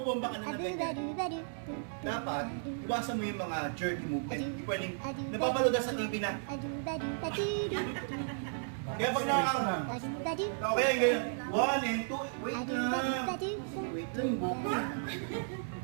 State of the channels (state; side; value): silent; left; 55 dB below the other